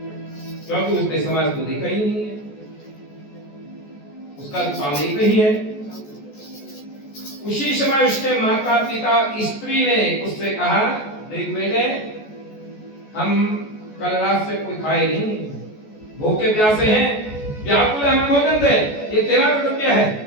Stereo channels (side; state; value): right; late; 14 ms